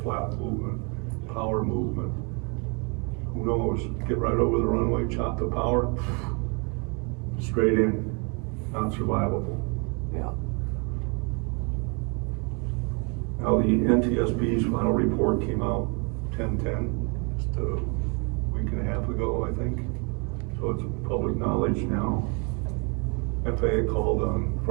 flat movement, power movement, who knows, get right over the runway, chop the power, straight in, not survivable. Yeah. Now the NTSB's final report came out 10/10, just a week and a half ago, I think. So it's public knowledge now. FAA called on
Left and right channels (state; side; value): quieter; left; 33.9 dB